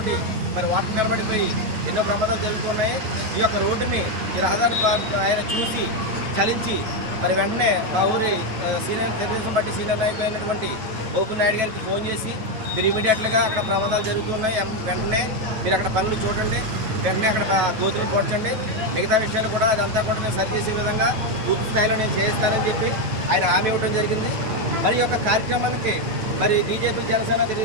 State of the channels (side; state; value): left; late; 9.3 ms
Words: మరి వాటర్ నిలబడిపోయి ఎన్నో ప్రమాదాలు జరుగుతున్నాయి. ఈ యొక్క రోడ్డుని ఈ రహదారి ఆయన చూసి చలించి మరి వెంటనే మా ఊరి తెలుగుదేశం పార్టీ సీనియర్ నాయకులు అయినటువంటి బోపు నాయుడు గారికి ఫోన్ చేసి మీరు ఇమీడియట్గా అక్కడ ప్రమాదాలు జరుగుతున్నాయి, వెంటనే మీరు అక్కడ పనులు చూడండి, వెంటనే అక్కడ గోతులు పోడ్చండి, మిగతా విషయాలు కూడా అదంతా కూడా నేను సరిచేసే విధంగా పూర్తి స్థాయిలో నేను చేయిస్తానని చెప్పి ఆయన హామీ ఇవ్వడం జరిగింది. మరి ఈ యొక్క కార్యక్రమానికి మరి బీజేపీ జనసేన